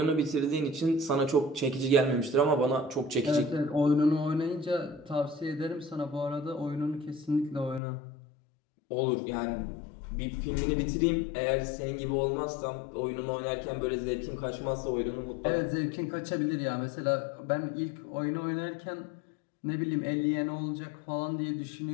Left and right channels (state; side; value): drops out; right; at 7.8 s